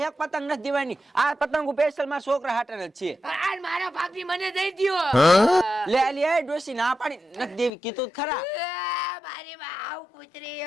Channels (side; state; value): right; drops out; at 7.7 s